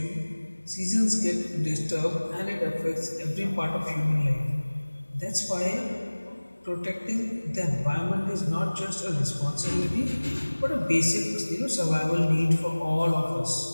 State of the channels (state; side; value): inverted; both; correlation -1.00